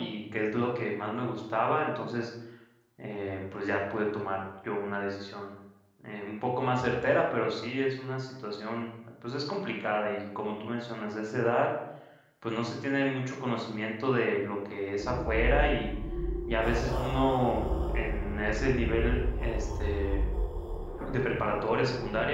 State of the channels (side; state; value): both; identical; correlation 1.00